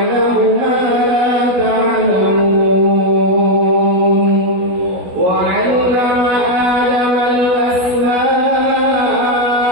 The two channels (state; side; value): late; left; 16 ms